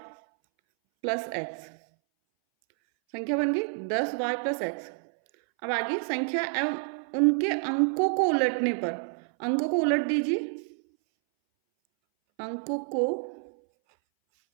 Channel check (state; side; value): silent; left; 59 dB below the other